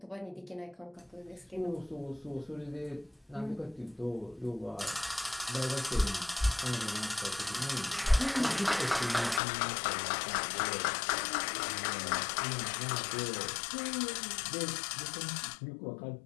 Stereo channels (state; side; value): drops out; right; at 9.4 s